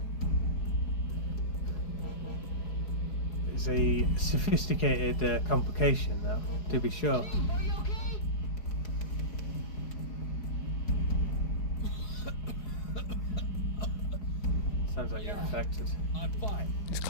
It's a sophisticated complication, though, to be sure. Sounds like you're infected. I'm fine. He's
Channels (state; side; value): late; right; 4.8 ms